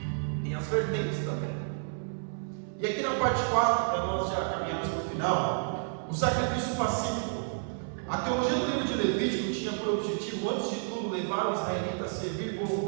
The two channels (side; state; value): left; silent; 58 dB below the other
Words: Tem as vertentes também. E aqui na parte 4, para nós já caminharmos para o final, o sacrifício pacífico. A teologia do livro de Levítico tinha por objetivo, antes de tudo, levar o israelita a servir